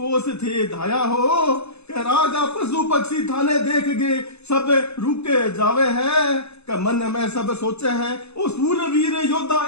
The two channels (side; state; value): right; late; 0.80 ms